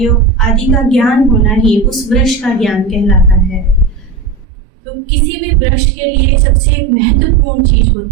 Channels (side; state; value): left; drops out; at 4.5 s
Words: आदि का ज्ञान होना ही उस वृक्ष का ज्ञान कहलाता है। तो किसी भी वृक्ष के लिए सबसे महत्वपूर्ण चीज